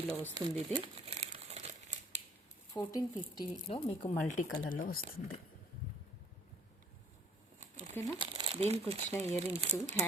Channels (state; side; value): normal; both; correlation 0.58